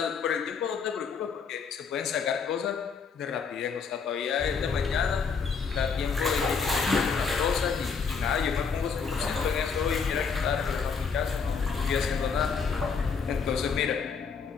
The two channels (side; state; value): right; quieter; 5.7 dB